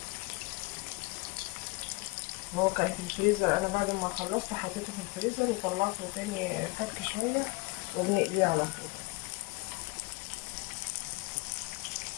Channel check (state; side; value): quieter; right; 25.7 dB